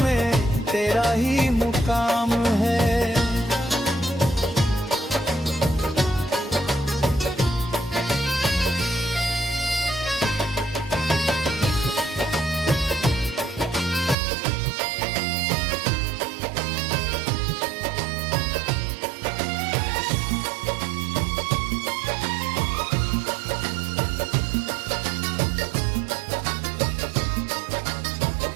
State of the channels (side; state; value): left; drops out; at 14.2 s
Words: तेरा ही मुकाम है।